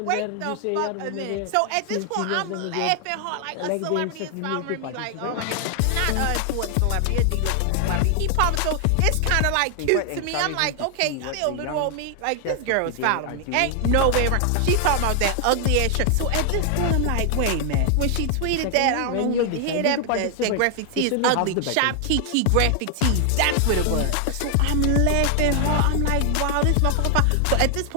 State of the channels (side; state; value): both; different; correlation 0.00